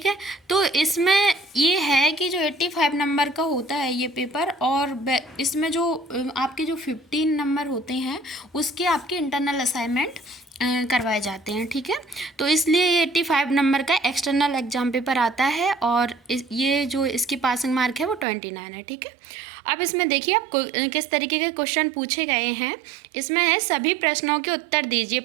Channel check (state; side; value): drops out; left; at 18.2 s